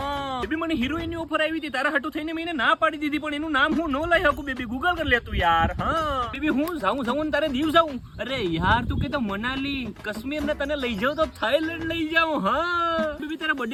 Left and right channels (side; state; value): both; identical; correlation 1.00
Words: બેબી મને હિરોઈન ની ઓફર આવી હતી, તારા હાટુ થઈને મેં ના પાડી દીધી, પણ એનું નામ હું ન લઈ શકું. બેબી ગૂગલ કરી લેતું યાર. હા બેબી હું જાઉં તારે દીવ જાઉં. અરે યાર તું કે તો મનાલી કાશ્મીર ને તને લઈ જાઉં તો થાઈલેન્ડ લઈ જાઉં. હા બેબી તારા